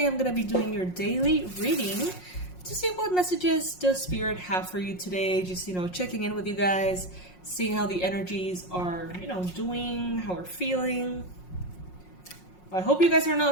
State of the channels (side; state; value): right; late; 5.5 ms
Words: I'm going to be doing your daily reading to see what messages does Spirit have for you today. Just, checking in with you guys, seeing how the energies are, doing, how we're feeling. I hope you guys are